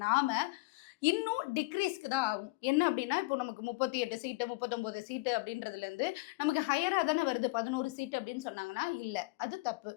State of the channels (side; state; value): right; quieter; 24.3 dB